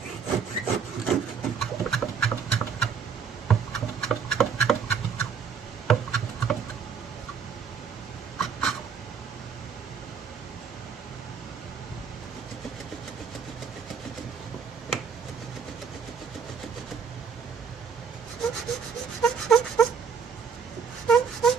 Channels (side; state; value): left; quieter; 6.4 dB